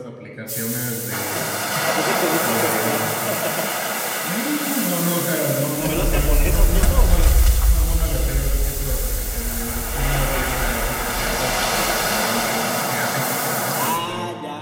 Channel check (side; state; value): both; identical; correlation 1.00